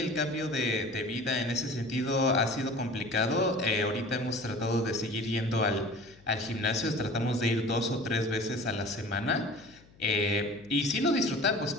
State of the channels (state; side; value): noise; left; hum, 26 dB below the sound